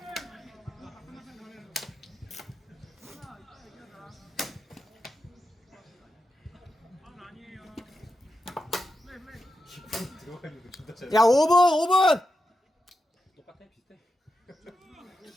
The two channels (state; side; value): normal; both; correlation 0.88